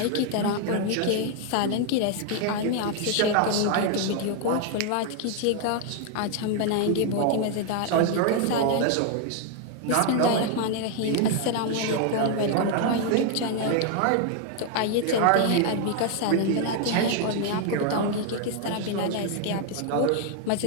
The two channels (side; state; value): both; different; correlation 0.00